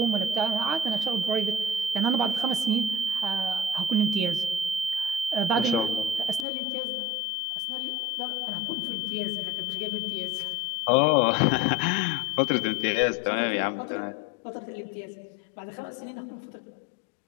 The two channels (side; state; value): right; drops out; at 6.5 s